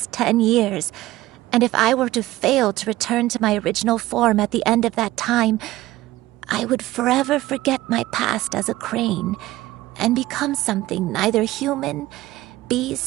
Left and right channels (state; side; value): quieter; left; 16.9 dB